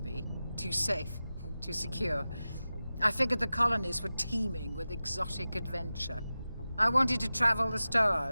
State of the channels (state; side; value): inverted; both; correlation -0.95